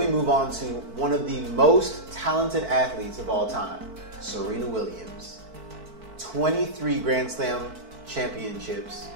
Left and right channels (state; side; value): late; left; 4.5 ms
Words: move on to one of the most talented athletes of all time, Serena Williams. 23 Grand Slam championships,